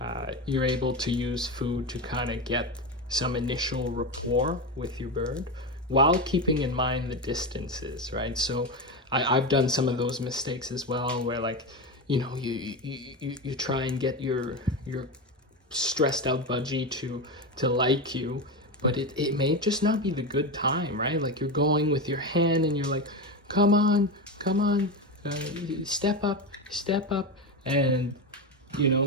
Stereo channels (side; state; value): both; normal; correlation 0.17